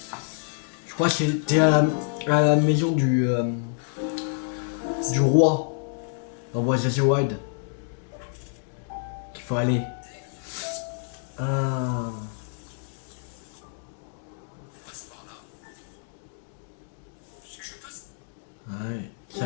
Je crois que c'était à la maison du roi. Dans Breath of the Wild. Qu'il faut aller. Ah. Ouais. C'est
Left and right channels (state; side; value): silent; right; digital silence